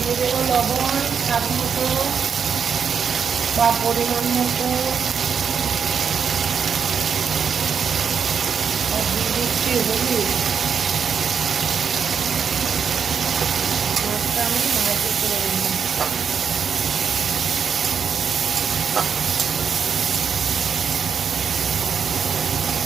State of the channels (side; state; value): left; quieter; 6.7 dB